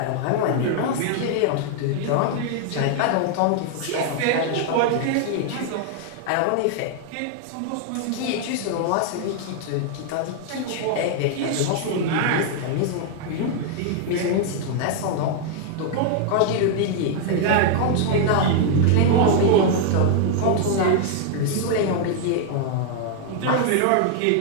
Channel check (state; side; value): different; both; correlation 0.00